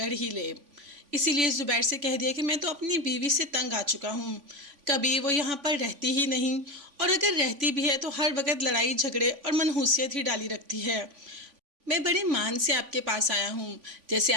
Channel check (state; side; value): late; left; 3.5 ms